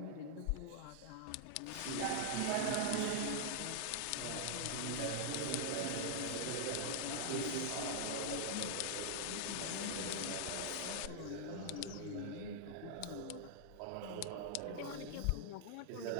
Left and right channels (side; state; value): both; different; correlation -0.01